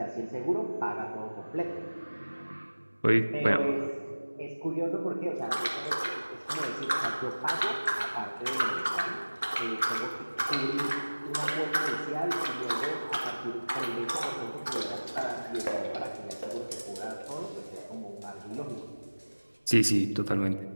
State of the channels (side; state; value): both; inverted; correlation -1.00